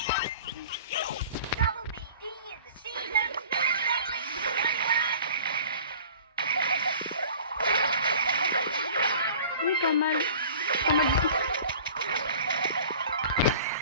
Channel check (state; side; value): inverted; both; correlation -0.45